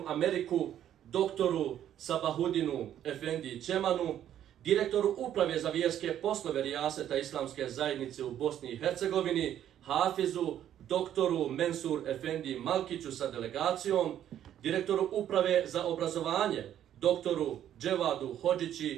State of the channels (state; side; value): quieter; left; 10.9 dB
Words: Ameriku, doktoru Sabahudinu Efendi Čemanu, direktoru uprave za vjerske poslove Rijaseta Islamske zajednice u Bosni i Hercegovini, Hafizu doktoru Mensur Efendi Malkiću sa delegacijom, direktoru uprave za obrazovanje, doktoru Dževadu